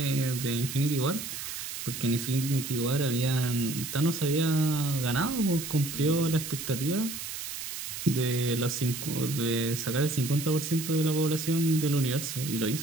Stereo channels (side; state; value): right; noise; hiss, 7 dB below the sound